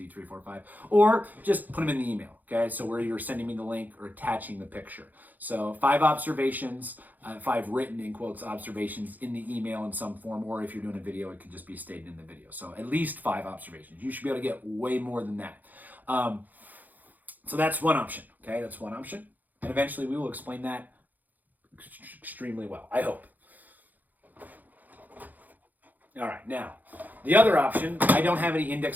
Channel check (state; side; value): late; left; 0.083 ms